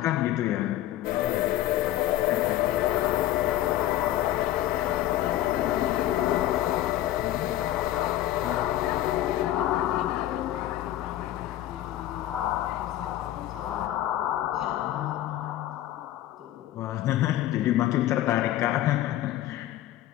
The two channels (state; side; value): quieter; right; 13.8 dB